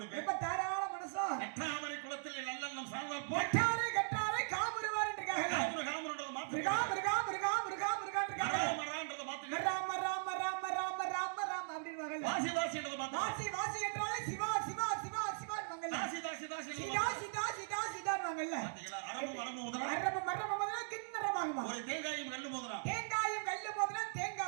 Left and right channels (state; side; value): silent; left; digital silence